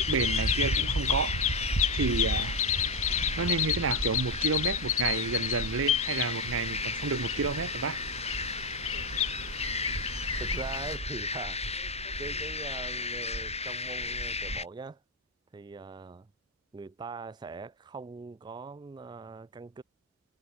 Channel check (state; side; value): normal; both; correlation 0.06